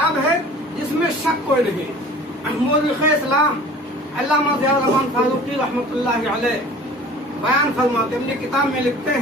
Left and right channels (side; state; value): both; normal; correlation 0.45